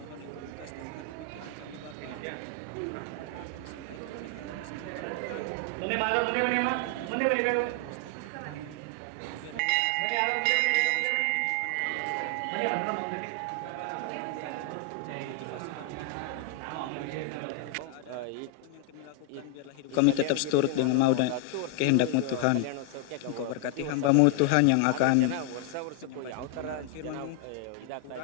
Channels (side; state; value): both; different; correlation 0.00